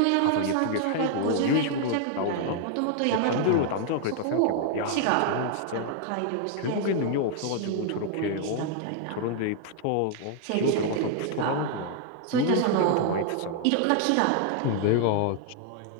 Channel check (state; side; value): different; both; correlation 0.00